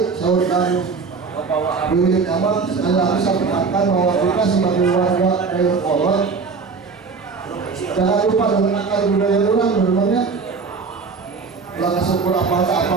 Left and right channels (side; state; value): left; quieter; 4.9 dB